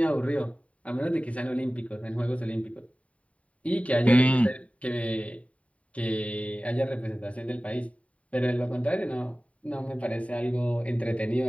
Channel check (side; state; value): right; late; 0.066 ms